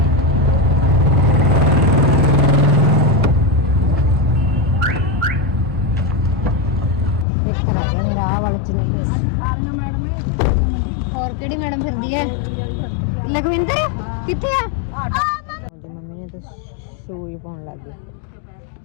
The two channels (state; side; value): drops out; right; at 7.2 s